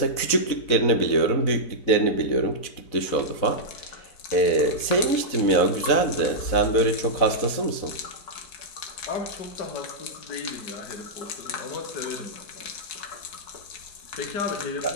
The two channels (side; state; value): right; late; 4.0 ms